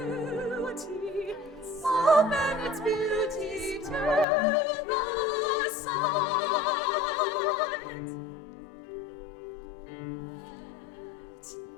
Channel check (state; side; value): drops out; right; at 4.2 s